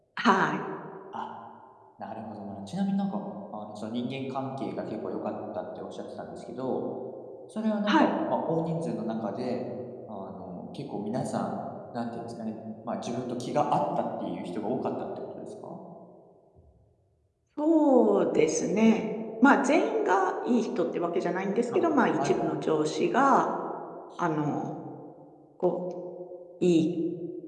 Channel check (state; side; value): identical; both; correlation 1.00